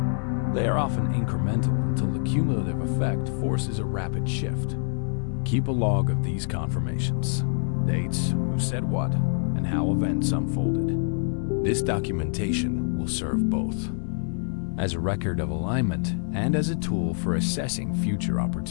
They are often incremental until the cumulative effect forces a rapid shift. Keep a log of these confirmations: dates, who said what, and how events unfolded. This documentation will serve both as a record of alignment and as a tool for assessing future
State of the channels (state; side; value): silent; right; 61 dB below the other